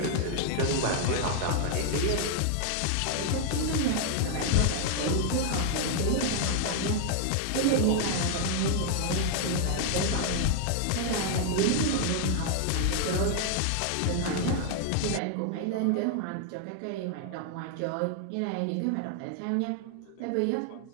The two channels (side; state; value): both; different; correlation 0.00